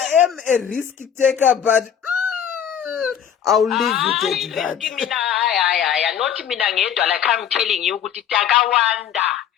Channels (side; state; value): right; quieter; 8.7 dB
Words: am a risk taker, but I'll leave it at that. Not mina ngedwa, like I'm telling you, kuti takawanda